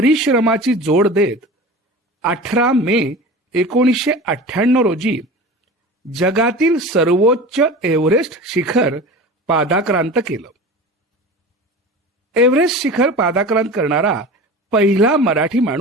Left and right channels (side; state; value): both; normal; correlation 0.35